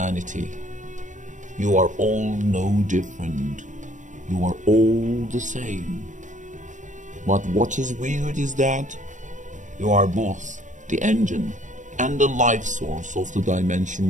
You are all no different. You are all the same. But what is weird is that you are both the engine and the life source of the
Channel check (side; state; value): left; late; 0.36 ms